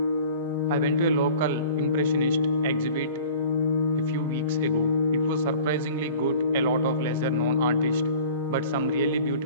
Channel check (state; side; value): inverted; both; correlation -0.45